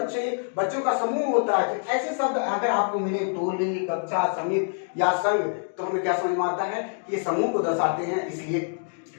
का समूह होता है। तो ऐसे शब्द अगर आपको मिले, टोली, कक्षा, समिति या संघ, तो हमें क्या समझ में आता है कि ये समूह को दर्शाते हैं, इसलिए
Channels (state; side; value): silent; right; digital silence